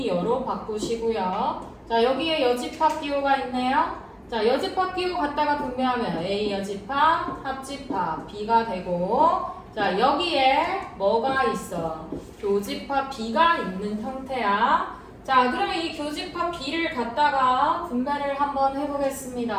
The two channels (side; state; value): both; identical; correlation 1.00